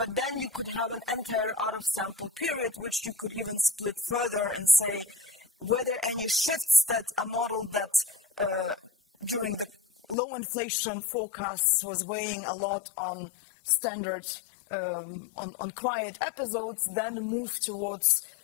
then you could have an entire out-of-sample period, which you could even split further and say, were there any shifts that a model that during the low inflation forecasts was weighing a lot on standard, on quiet episodes, then moved towards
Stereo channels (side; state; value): right; drops out; at 10.2 s